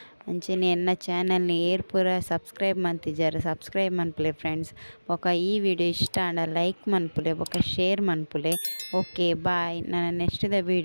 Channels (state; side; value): inverted; both; correlation -1.00